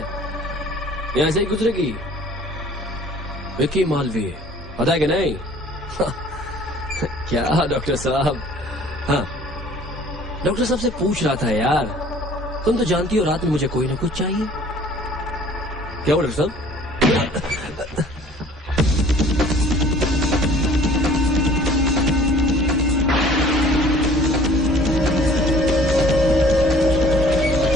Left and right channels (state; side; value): normal; both; correlation 0.52